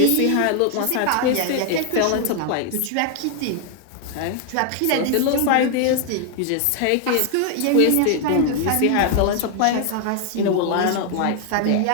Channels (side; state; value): both; different; correlation 0.00